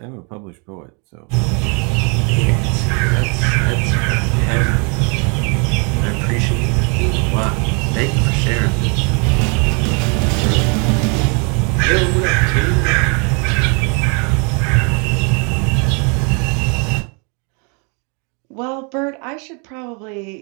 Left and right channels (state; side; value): quieter; left; 35.2 dB